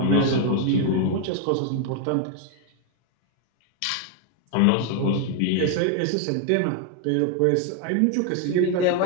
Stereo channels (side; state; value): both; different; correlation 0.00